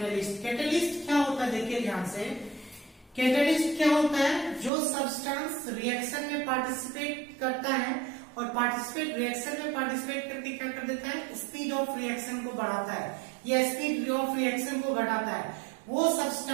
कैटेलिस्ट क्या होता है, देखिए ध्यान से, कैटेलिस्ट क्या होता है, जो सब्सटेंस रिएक्शन में पार्टिसिपेट करता है और पार्टिसिपेट रिएक्शन में पार्टिसिपेट करके क्या कर देता है, स्पीड ऑफ रिएक्शन को बढ़ाता है या स्पीड ऑफ रिएक्शन को घटाता है, वो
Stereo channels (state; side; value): drops out; left; at 4.7 s